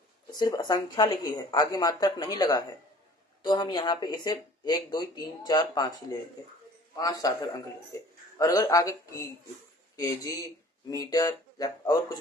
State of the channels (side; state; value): both; normal; correlation 0.49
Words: सिर्फ संख्या लिखी है, आगे मात्रक नहीं लगा है, तो हम यहाँ पे इसे 1 2 3 4 5 ही लेंगे, 5 सार्थक अंक लेंगे। और अगर आगे केजी मीटर या और कुछ